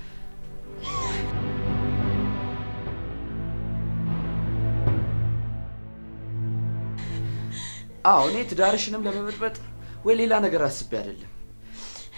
አዎ እኔ ትዳርሽንም ለመበጥበጥ ወይ ሌላ ነገር አስቤ አይደለም።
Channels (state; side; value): inverted; both; correlation -1.00